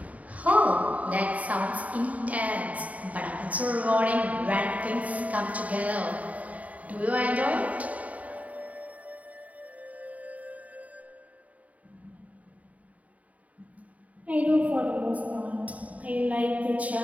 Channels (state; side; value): late; left; 0.070 ms